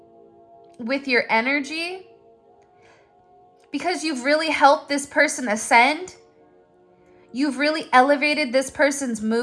with your energy because you've really helped this person ascend. You've really elevated this person's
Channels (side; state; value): both; identical; correlation 1.00